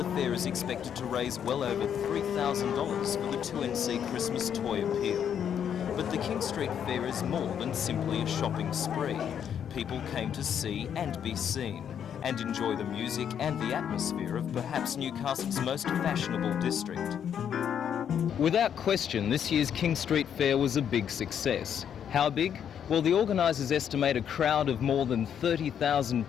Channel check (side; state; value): right; quieter; 8.6 dB